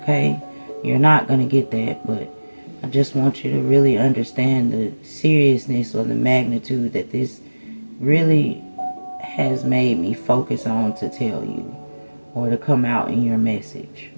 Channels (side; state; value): both; inverted; correlation -1.00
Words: You're not going to get that, but I just want you to really understand the seriousness or the magnitude that this really has made me focus on to tell you or to come out in your message.